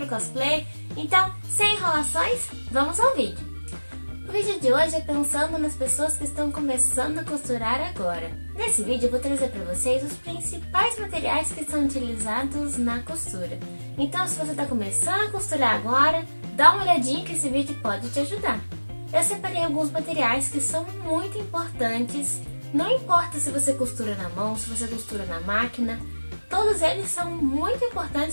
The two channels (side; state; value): both; inverted; correlation -1.00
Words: cosplay. Então, sem enrolações, vamos ao vídeo. O vídeo de hoje é pensando nas pessoas que estão começando a costurar agora. Nesse vídeo eu vou trazer para vocês os principais materiais que são utilizados na costura. Então, se você está começando a costurar agora, dá uma olhadinha que esse vídeo pode te ajudar. Eu separei alguns materiais que são muito importantes, não importa se você costura na mão, se você costura na máquina, todos eles são muito